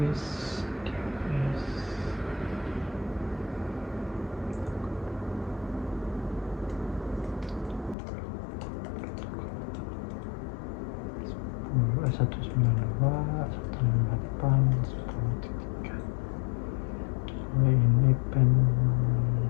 DNS. Satu sembilan dua satu delapan sepuluh tiga. Ini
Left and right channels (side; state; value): right; drops out; at 8.0 s